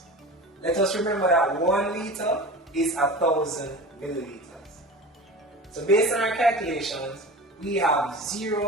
Let us remember that 1 liter is 1,000 milliliters. So based on our calculations, we have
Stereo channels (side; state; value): both; normal; correlation 0.34